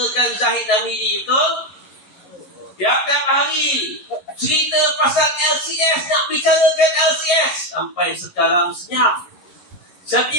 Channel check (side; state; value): right; late; 11 ms